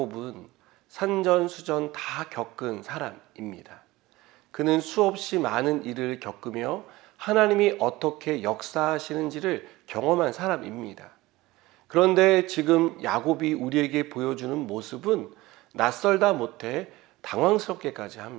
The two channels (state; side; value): quieter; left; 19.3 dB